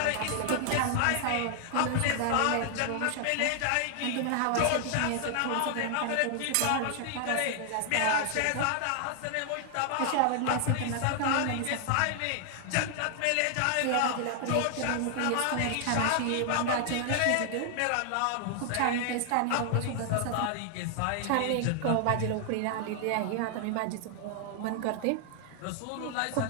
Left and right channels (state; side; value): different; both; correlation 0.00